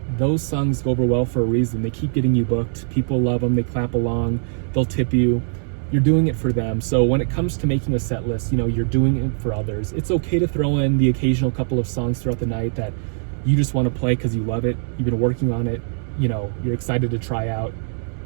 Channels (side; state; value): left; silent; 64 dB below the other